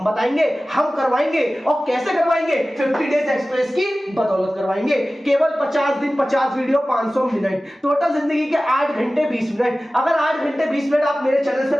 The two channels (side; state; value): both; normal; correlation 0.96